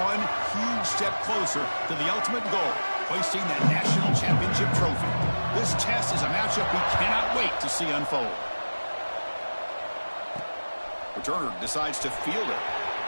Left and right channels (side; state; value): both; inverted; correlation -1.00